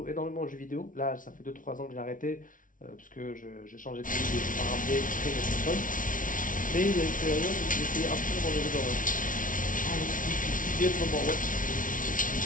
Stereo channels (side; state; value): right; late; 0.38 ms